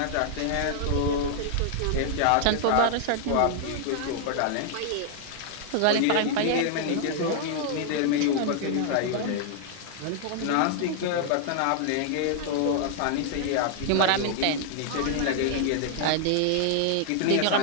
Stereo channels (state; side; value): different; both; correlation -0.01